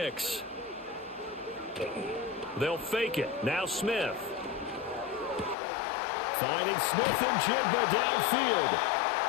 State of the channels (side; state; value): right; drops out; at 5.6 s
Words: They'll fake it. Now Smith. Finding Smith and Jigba downfield.